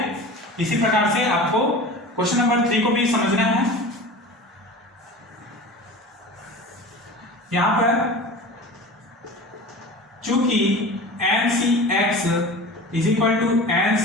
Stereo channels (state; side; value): normal; both; correlation 0.35